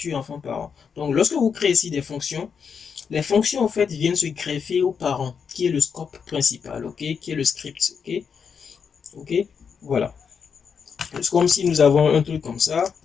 enfant-parent. Donc, lorsque vous créez ici des fonctions, les fonctions, en fait, viennent se greffer aux parents, qui est le scope principal, ok, qui est le script, ok. Ok, voilà. C'est comme si nous avons un truc comme ça.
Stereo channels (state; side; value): quieter; right; 6.5 dB